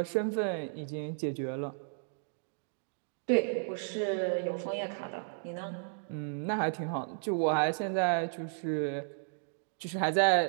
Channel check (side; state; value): left; silent; digital silence